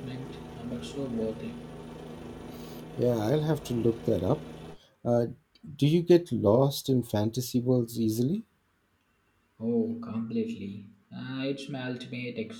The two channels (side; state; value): both; identical; correlation 1.00